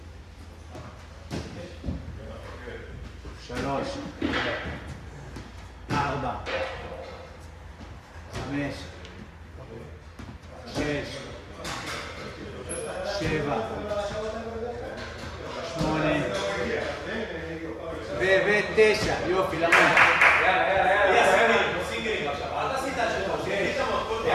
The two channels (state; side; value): identical; both; correlation 1.00